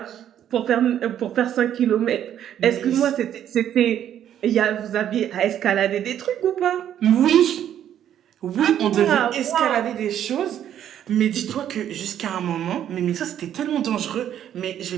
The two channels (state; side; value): quieter; left; 10.4 dB